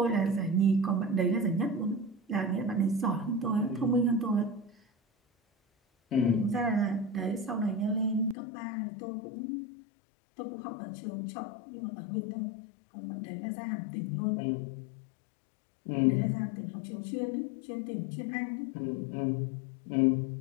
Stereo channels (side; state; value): right; drops out; at 8.3 s